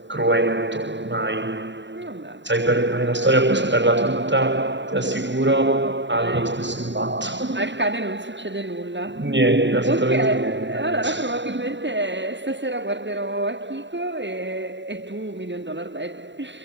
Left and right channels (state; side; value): late; left; 0.52 ms